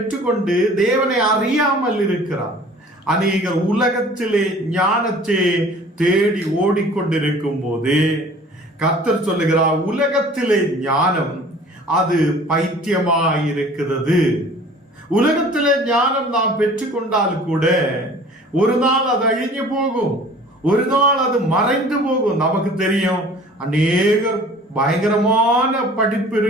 தேவனை அறியாமல் இருக்கிறார். அநேகர் உலகத்திலே ஞானத்தை தேடி ஓடிக்கொண்டிருக்கும் போது கர்த்தர் சொல்லுகிறார், உலகத்திலே ஞானம் அது பைத்தியமாயிருக்கிறது. உலகத்திலே ஞானம் நாம் பெற்றுக்கொண்டால் கூட ஒரு நாள் அது அழிஞ்சு போகும், ஒரு நாள் அது மறைந்து போகும். நமக்கு தெரியும், அநேக பயங்கரமான படிப்பு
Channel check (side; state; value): both; normal; correlation 0.48